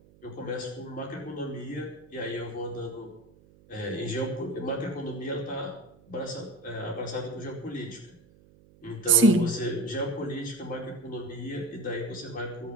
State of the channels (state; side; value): noise; right; hum, 26 dB below the sound